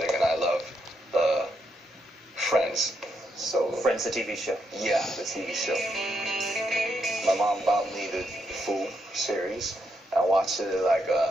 and I love the Friends. So Friends, the TV show. Yeah, the TV show. My mom bought me the full series. I watched it like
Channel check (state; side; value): normal; both; correlation 0.79